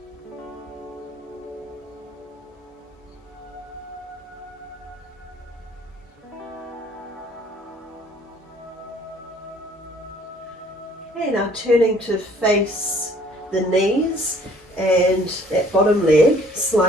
now turning to face the knees, and that bottom leg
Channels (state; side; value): normal; both; correlation 0.57